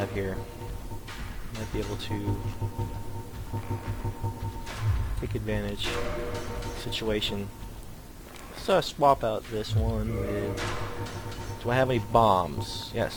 here. Might be able to take advantage of the situation. Let's swap out this one with... Do I have any bombs?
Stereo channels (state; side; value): identical; both; correlation 1.00